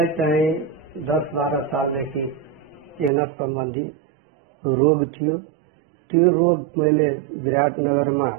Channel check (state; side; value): drops out; left; at 3.1 s